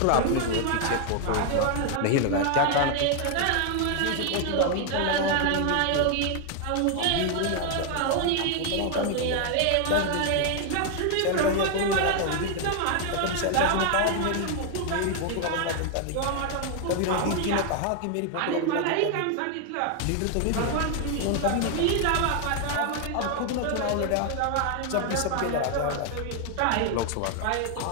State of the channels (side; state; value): both; different; correlation 0.00